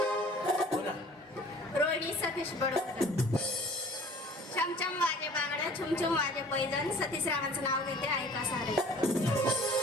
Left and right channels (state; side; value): normal; both; correlation 0.49